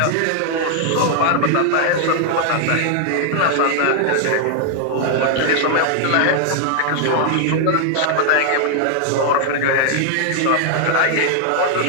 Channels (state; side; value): different; both; correlation 0.00